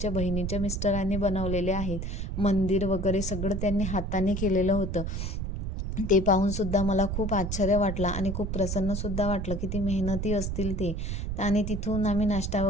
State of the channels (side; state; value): right; noise; rumble, 3 dB below the sound